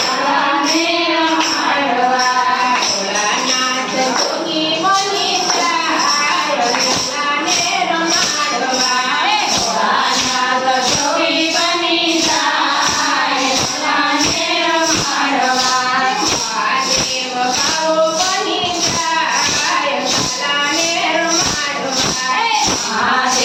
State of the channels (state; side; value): identical; both; correlation 1.00